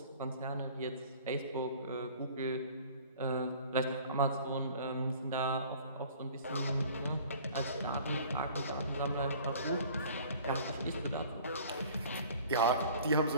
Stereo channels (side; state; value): both; inverted; correlation -0.49